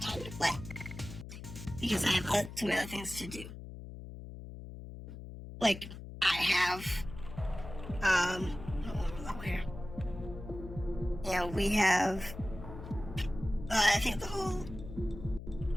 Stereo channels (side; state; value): left; noise; hum, 11 dB below the sound